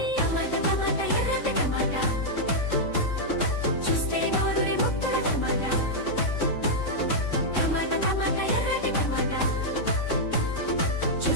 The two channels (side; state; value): right; late; 3.6 ms